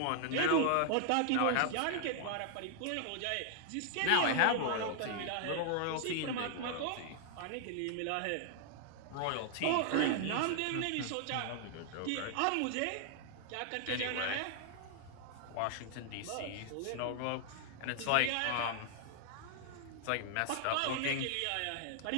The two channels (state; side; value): different; both; correlation 0.00